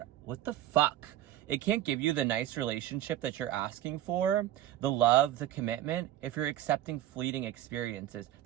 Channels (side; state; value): left; quieter; 12.7 dB